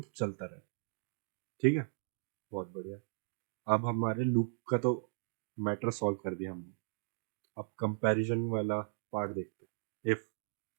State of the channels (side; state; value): left; silent; digital silence